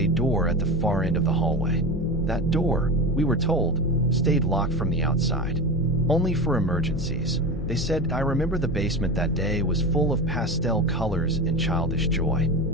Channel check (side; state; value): left; noise; hum, 10 dB below the sound